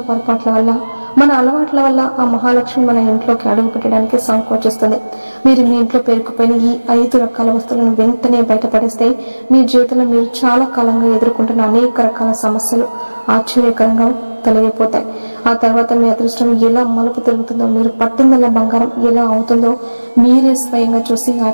పొరపాట్ల వల్ల, మన అలవాట్ల వల్ల ఆ మహాలక్ష్మి మన ఇంట్లోకి అడుగు పెట్టడానికి సంకోచిస్తుంది. మీరు మీ ఇంట్లో పేరుకుపోయిన ఈ 5 రకాల వస్తువులను వెంటనే బయటపడేస్తే మీ జీవితంలో మీరు చాలా కాలంగా ఎదుర్కొంటున్న అనేక రకాల సమస్యలు ఆశ్చర్యకరంగా తొలగిపోతాయి. ఆ తర్వాత మీ అదృష్టం ఎలా మలుపు తిరుగుతుందో, మీరు పట్టిందల్ల బంగారం ఎలా అవుతుందో మీరే స్వయంగా చూసి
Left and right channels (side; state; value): both; inverted; correlation -1.00